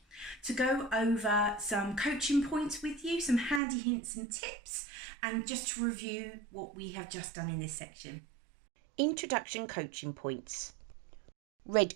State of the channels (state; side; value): drops out; left; at 3.6 s